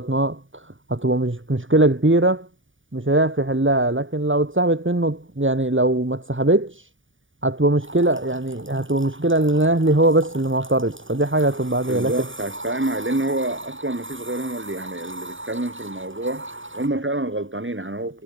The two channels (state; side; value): late; left; 0.57 ms